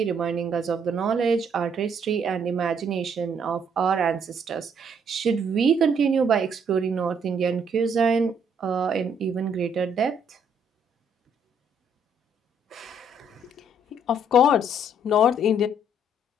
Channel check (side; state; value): both; normal; correlation 0.67